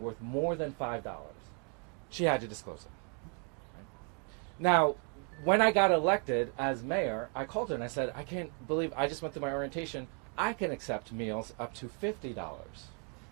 worth more than $5. She had to disclose it. Now, when I got elected as mayor, I called her and I said, I can't believe, I just went through my orientation, I can accept meals up to $50,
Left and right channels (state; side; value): quieter; left; 38.1 dB